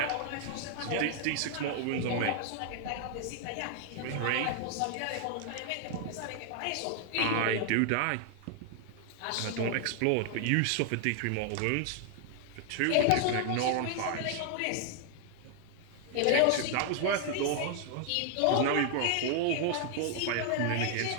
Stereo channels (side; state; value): both; different; correlation 0.00